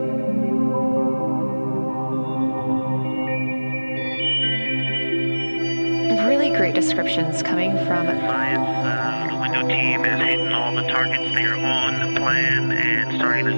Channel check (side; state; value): both; inverted; correlation -1.00